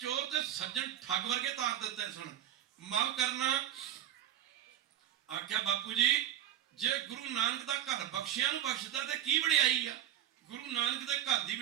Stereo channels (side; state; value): left; quieter; 11.3 dB